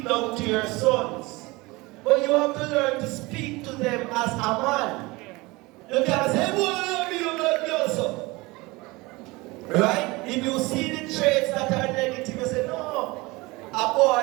down to your sons, but you have to learn to speak to them as a man. You can't say, boy, love me, you love me also. Right? If you see the traits that are negative, you say, no, a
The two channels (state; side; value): quieter; left; 23.0 dB